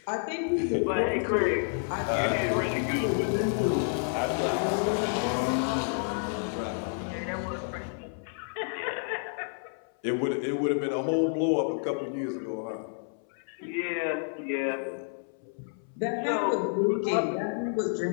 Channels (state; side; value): silent; right; 58 dB below the other